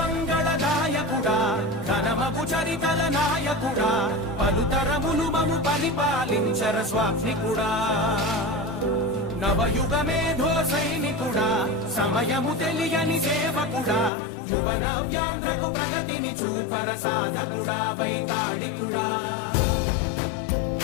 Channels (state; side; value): drops out; right; at 14.1 s